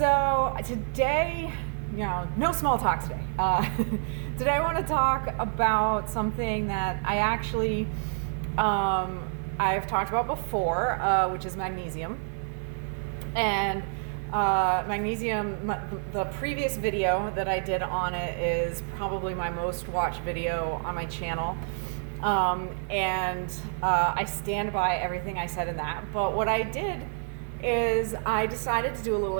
today, no small talk today. Today I want to talk about something that I've talked about before, which is magnesium. And magnesium, the previous video that I did on it is probably my most watched video on my channel. I stand by everything I said in that. But what I did is I decided to do a little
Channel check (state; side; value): silent; left; digital silence